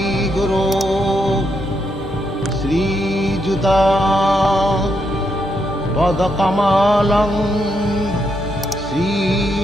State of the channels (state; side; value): normal; both; correlation 0.79